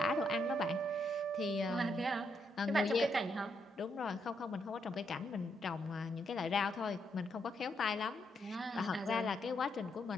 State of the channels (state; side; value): normal; both; correlation 0.78